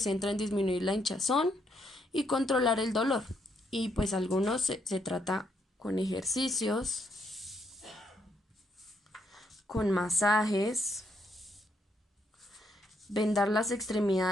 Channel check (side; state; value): both; normal; correlation 0.75